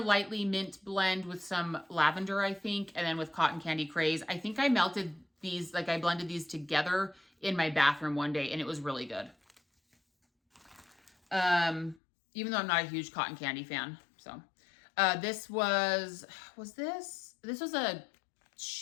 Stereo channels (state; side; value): drops out; right; at 12.0 s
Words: mint blend with some lavender, I think, and then with Cotton Candy Craze. I think I melted these, I blended these together in my bathroom one day, and it was really good. Even though I'm not a huge cotton candy fan. So, this was a